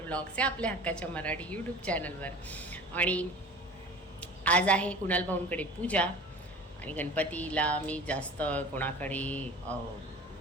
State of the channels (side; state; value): both; normal; correlation 0.40